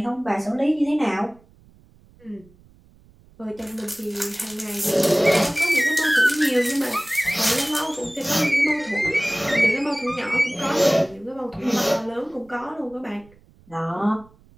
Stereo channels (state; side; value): noise; right; rumble, 28 dB below the sound